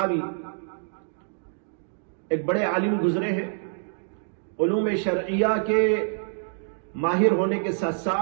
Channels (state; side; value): silent; left; digital silence